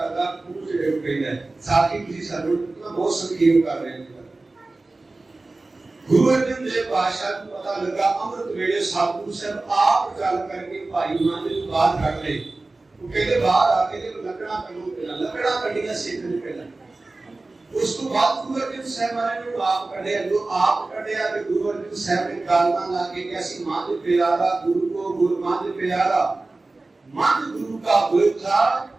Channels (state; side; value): quieter; left; 3.2 dB